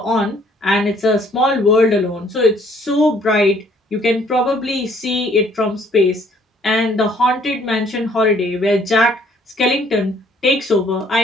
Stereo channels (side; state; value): both; normal; correlation 0.61